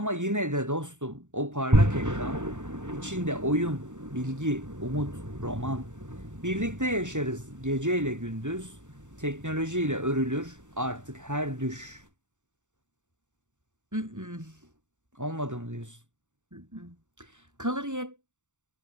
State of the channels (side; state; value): left; late; 0.85 ms